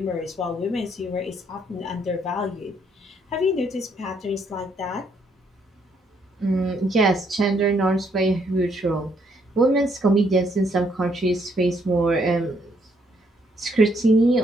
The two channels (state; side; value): normal; both; correlation 0.71